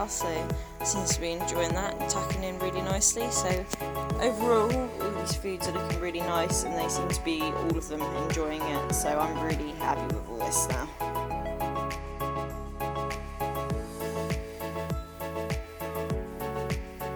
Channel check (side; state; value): both; identical; correlation 1.00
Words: so seems to be enjoying that and tucking in really nicely. So overall, all these foods are looking really nice and they seem to be, all of them, enjoying it, so I'm really happy with all this now.